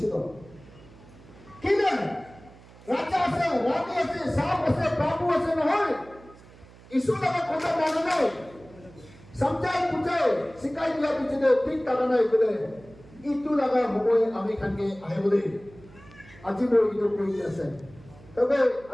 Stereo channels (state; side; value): noise; right; hum, 22 dB below the sound